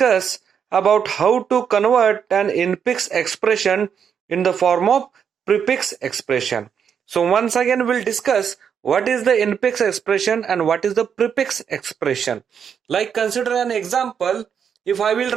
about how to convert an infix expression in the form of prefix expression. So once again we'll discuss what is the infix expression and what is the prefix expression. Like consider an example, if I will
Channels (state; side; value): quieter; left; 7.5 dB